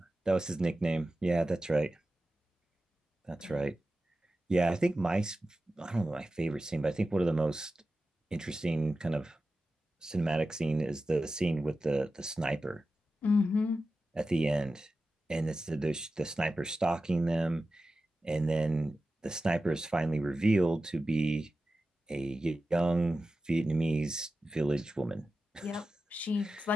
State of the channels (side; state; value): both; normal; correlation 0.93